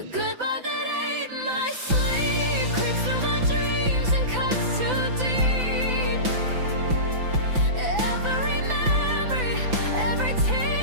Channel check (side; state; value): left; late; 5.9 ms